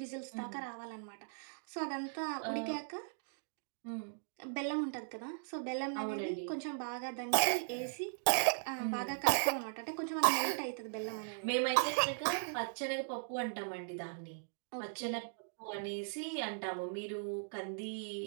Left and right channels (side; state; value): left; silent; digital silence